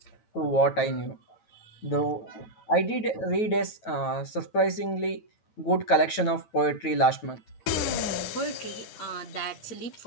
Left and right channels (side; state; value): right; late; 9.2 ms